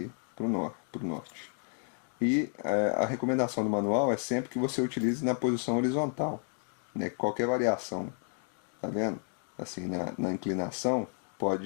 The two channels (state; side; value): silent; right; 57 dB below the other